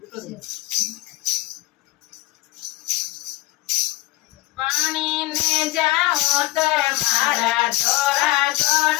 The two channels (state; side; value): quieter; right; 19.9 dB